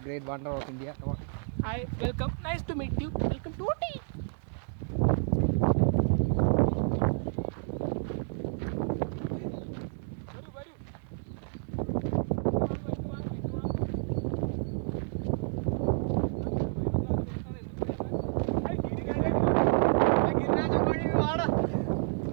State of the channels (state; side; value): silent; left; digital silence